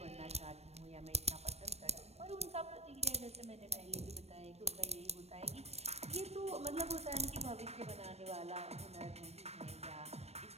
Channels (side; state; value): left; late; 0.31 ms